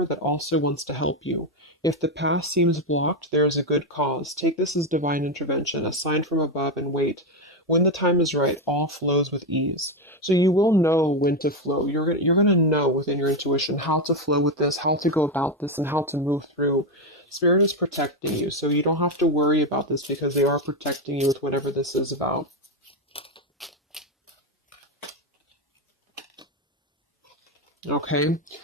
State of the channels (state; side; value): normal; both; correlation 0.09